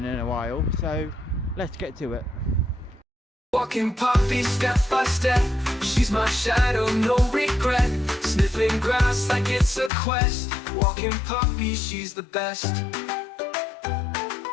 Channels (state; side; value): drops out; right; at 9.9 s